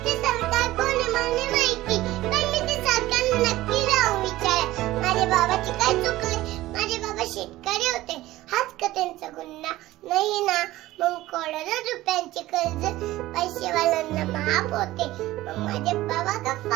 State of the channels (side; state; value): left; quieter; 16.7 dB